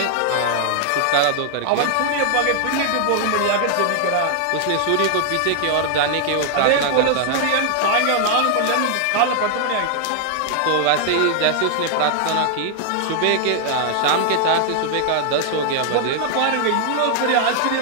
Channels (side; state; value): both; different; correlation 0.00